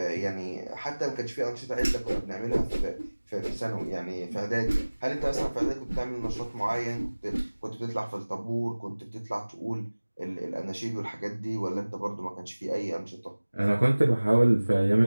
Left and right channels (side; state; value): both; inverted; correlation -1.00